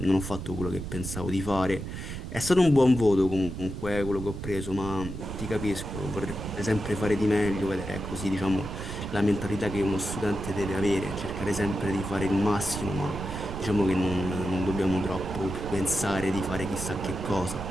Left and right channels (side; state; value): right; noise; rumble, 7 dB below the sound